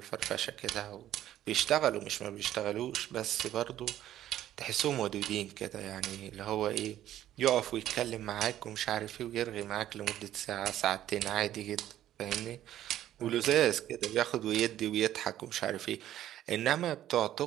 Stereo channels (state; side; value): quieter; left; 12.5 dB